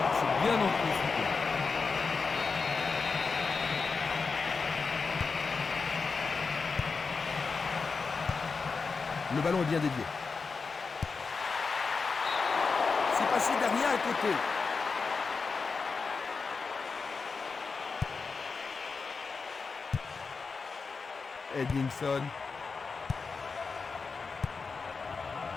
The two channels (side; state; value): right; quieter; 4.7 dB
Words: c'est bien anticipé. Le ballon est bien dévié. C'est passé derrière à côté. Edmondson.